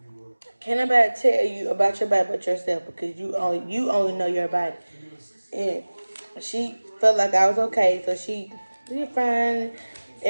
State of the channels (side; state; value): both; inverted; correlation -1.00